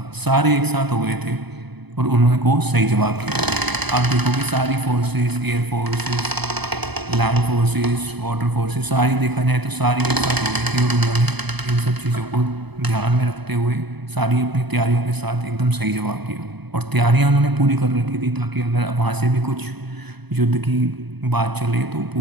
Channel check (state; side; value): late; left; 0.99 ms